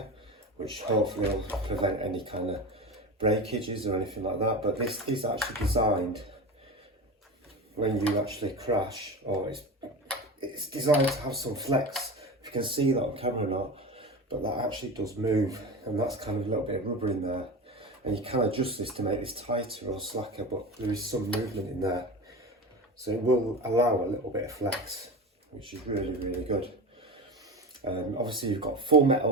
which hopefully will prevent any kind of breakages or anything like that, but this is actually designed when you actually crash, or it's designed to have some flex. If you can see that on camera or not, but that actually does move, and that's kind of a little bit of rubber in there, and you can adjust this to make this tighter or slacker, but there is some movement in there, so it will allow a little bit of flex, which is really good. Obviously you've got full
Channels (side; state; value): both; normal; correlation 0.27